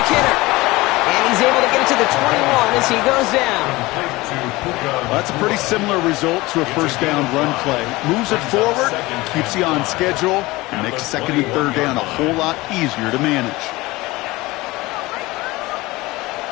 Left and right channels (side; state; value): right; quieter; 20.8 dB